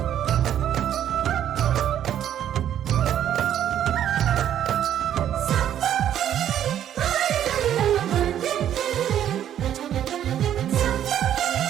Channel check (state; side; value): quieter; left; 10.5 dB